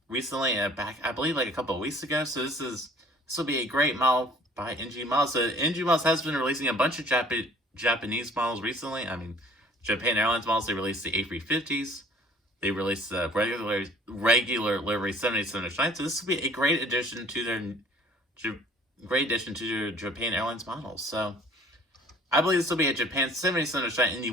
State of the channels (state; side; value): normal; both; correlation 0.53